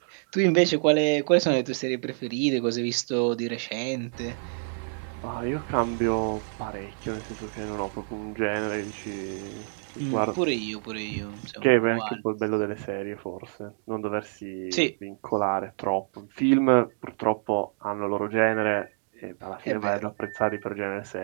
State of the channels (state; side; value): silent; left; digital silence